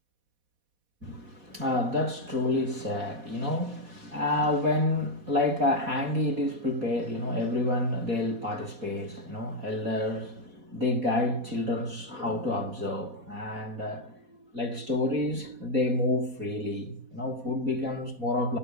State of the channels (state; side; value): late; left; 4.1 ms